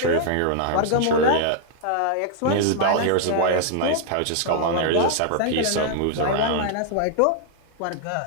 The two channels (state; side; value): different; both; correlation 0.00